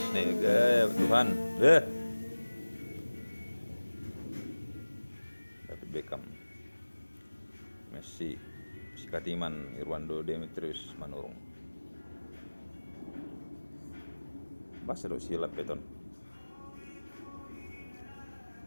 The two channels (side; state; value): both; inverted; correlation -1.00